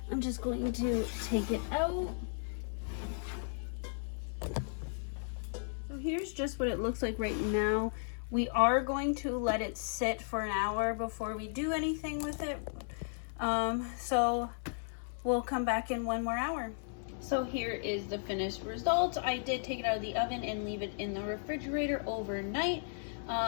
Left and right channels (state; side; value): silent; right; digital silence